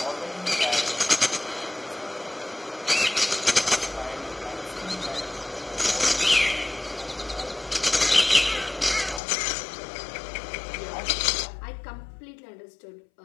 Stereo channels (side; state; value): right; drops out; at 9.2 s